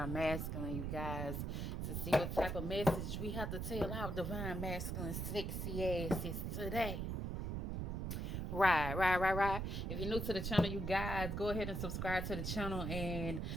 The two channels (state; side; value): noise; right; rumble, 2 dB below the sound